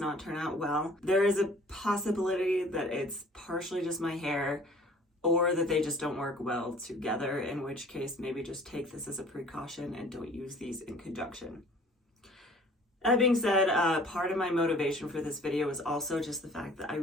turn out well. There is a possibility that it's partially just my hair or that they just don't work well together, in which case maybe just take this as a precaution and don't use these in conjunction. That being said, part of my motivation for this video is also just the fact that I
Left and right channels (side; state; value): both; normal; correlation 0.51